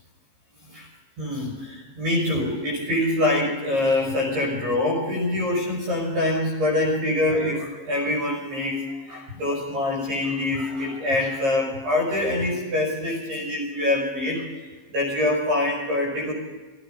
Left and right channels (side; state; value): left; late; 15 ms